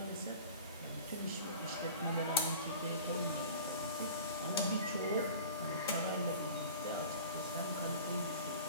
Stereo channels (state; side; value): inverted; both; correlation -0.41